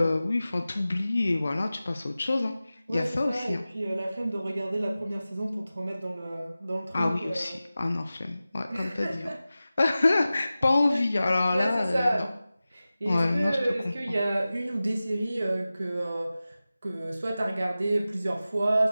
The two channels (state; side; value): inverted; both; correlation -0.95